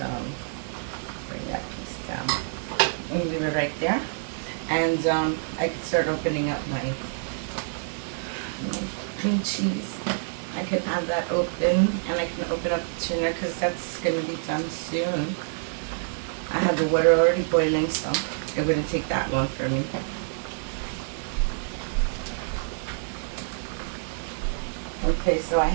bring that piece down. And leave it right there, and I can start opening up my cream cheese. I can have that open, and I can open up the tuna because that's gonna be done soon. I have the water already boiling, so it wouldn't take that long for me. Okay, so I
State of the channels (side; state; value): left; silent; digital silence